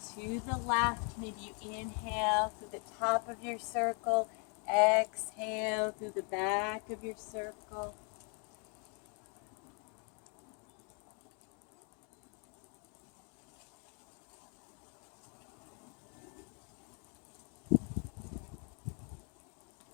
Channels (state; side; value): quieter; right; 38.0 dB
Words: to the left. Maybe you inhale through the top of your circle, exhale through the back of your circle.